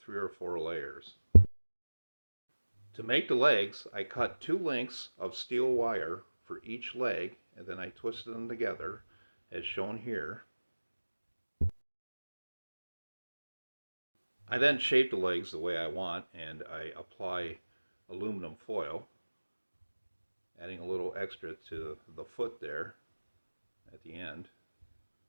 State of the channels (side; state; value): both; inverted; correlation -1.00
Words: or 4 layers. To make the legs, I cut 2 lengths of steel wire for each leg, and then I twisted them together as shown here. I then shape the legs the way I want, and I apply aluminum foil, adding a little extra to the foot there at the end.